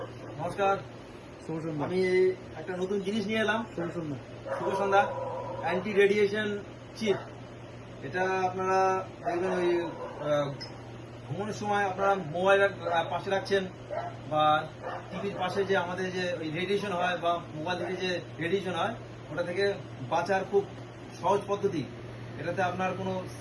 নমস্কার। শুভ সন্ধ্যা। আমি একটা নতুন জিনিস নিয়ে এলাম। শুভ সন্ধ্যা। শুভ সন্ধ্যা। Anti radiation chip. এটা আপনারা দেখবেন ওই ঘুমানোর সময় আপনারা মোবাইল পাশে রাখছেন বা টিভির পাশে যে আমাদের যে ওই রেডিয়েশন হয় বা মোবাইল থেকে যে রেডিয়েশন হয় ওটা থেকে বাঁচার খুব সহজ পদ্ধতি। এটাতে আপনার কোনো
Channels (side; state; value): both; identical; correlation 1.00